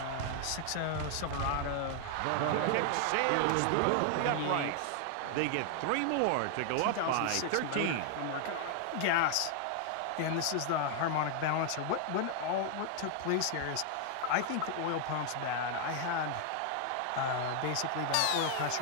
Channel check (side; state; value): both; different; correlation 0.00